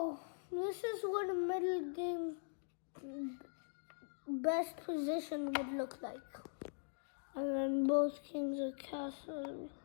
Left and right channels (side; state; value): right; silent; digital silence